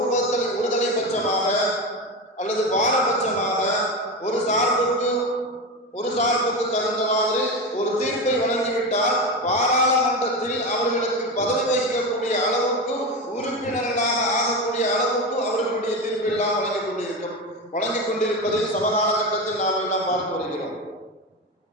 ஒருதலை பட்சமாக அல்லது பாரபட்சமாக ஒரு சார்புக்கு தகுந்த மாதிரி ஒரு தீர்ப்பை வழங்கிவிட்டால் பாராளுமன்றத்தில் அவர்களுக்கு பதவி வகிக்கக்கூடிய அளவுக்கு, உறுப்பினர்களாக ஆகக்கூடிய அளவுக்கு அவர்களுடைய தீர்ப்பெல்லாம் வழங்கிக் கொண்டிருப்பதை சமகால கட்டத்தில் நாம் எல்லாம் பார்த்து வருகிறோம்.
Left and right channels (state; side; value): normal; both; correlation 0.20